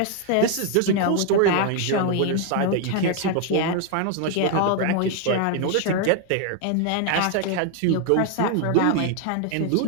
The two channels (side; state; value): both; different; correlation 0.00